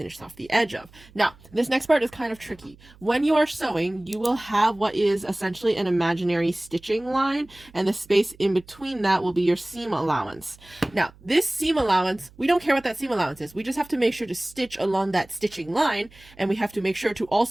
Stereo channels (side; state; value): right; noise; hum, 25 dB below the sound